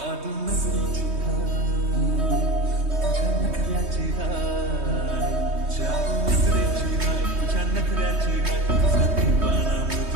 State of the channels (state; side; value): late; left; 3.2 ms